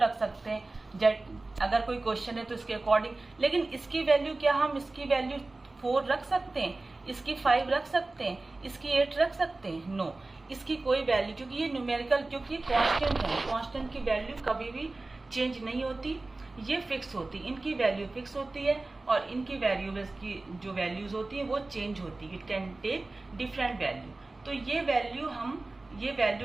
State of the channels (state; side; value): quieter; left; 3.1 dB